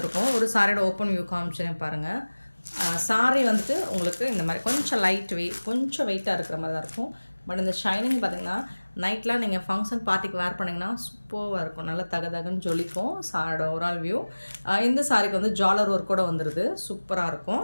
ஒரு சாரியோட ஓப்பன் வியூ காமிச்சேன் பாருங்கள். சாரி வந்துட்டு உங்களுக்கு இந்த மாதிரி கொஞ்சம் கொஞ்சம் வெயிட்டாக இருக்கிற மாதிரி தான் இருக்கும். பட் இந்த ஷைனிங் பார்த்திங்கன்னா நைட்லாம் நீங்கள் ஃபங்க்ஷன் பார்ட்டிக்கு வேர் பண்ணிங்கன்னா சூப்பராக இருக்கும். நல்லா தகன்னு ஜொலிக்கும் சாரியோட ஓவரால் வியூ. இந்த சாரிக்கு வந்து ஜாலர் ஒர்க் கூட வந்துடுது, சூப்பராக இருக்கும்.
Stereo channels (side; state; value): both; inverted; correlation -1.00